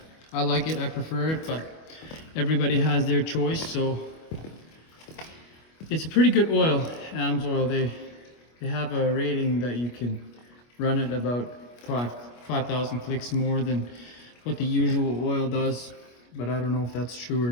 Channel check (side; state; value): right; late; 25 ms